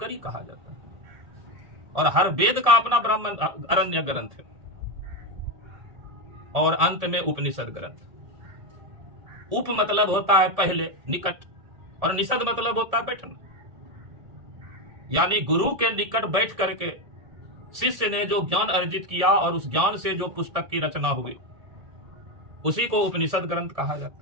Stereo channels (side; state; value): left; late; 1.7 ms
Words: कहा जाता है। और हर वेद का अपना ब्राह्मण अरण्य ग्रंथ है और अंत में उपनिषद ग्रंथ। उप मतलब होता है पहले, निकट, और निषद मतलब होता है बैठना, यानी गुरु के निकट बैठ करके शिष्य ने जो ज्ञान अर्जित किया और उस ज्ञान से जो पुस्तक की रचना हुई उसी को उपनिषद ग्रंथ कहा